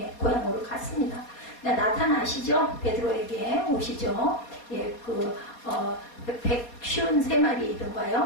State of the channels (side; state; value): right; late; 4.2 ms